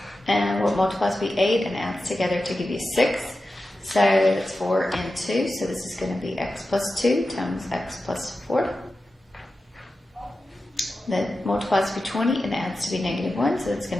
and what multiplies to be 8 and adds together to give you 6. So it's 4 and 2, so this is going to be x plus 2 times x plus 4. That multiplies to be 20 and adds to be negative 1, so it's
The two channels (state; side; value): normal; both; correlation 0.93